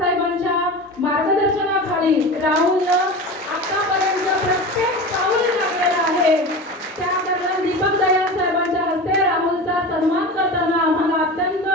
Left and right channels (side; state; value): both; normal; correlation 0.30